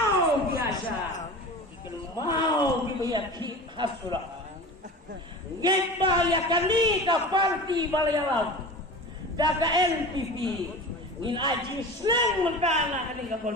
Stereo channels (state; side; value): normal; both; correlation 0.34